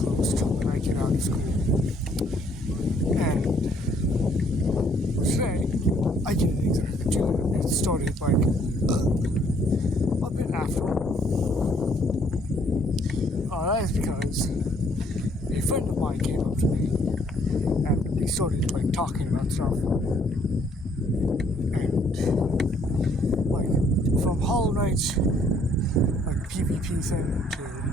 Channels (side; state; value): both; normal; correlation 0.64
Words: to when I get out of school. And today, I didn't exactly do it. It started like a bit after. That is because a friend of mine came up to me and we started like talking about stuff. And like from Hollow Knight, like PvP thing to